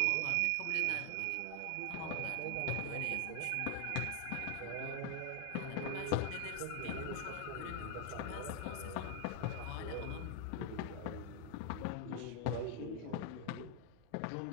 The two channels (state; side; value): different; both; correlation 0.00